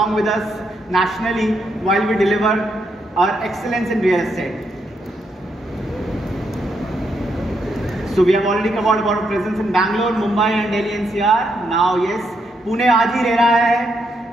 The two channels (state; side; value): normal; both; correlation 0.79